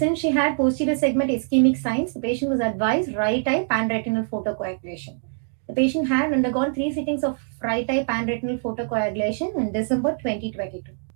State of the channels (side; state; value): left; silent; digital silence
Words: she had posterior segment ischemic signs. The patient was advised right eye panretinal photocoagulation. The patient had undergone 3 sittings of right eye panretinal photocoagulation in December 2022.